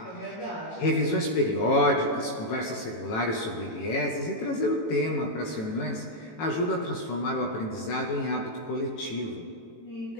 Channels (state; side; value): late; right; 18 ms